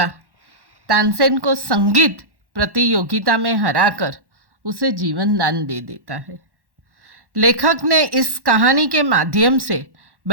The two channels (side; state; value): left; late; 1.1 ms